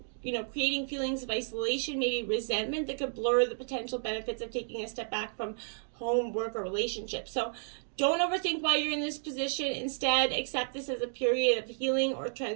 creating feelings of isolation, maybe resentment that could blur the potential benefits of taking a step back from home, work, or relationships. So don't overthink why you're in this position. Instead, accept this as a period of healing or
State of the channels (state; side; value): silent; left; digital silence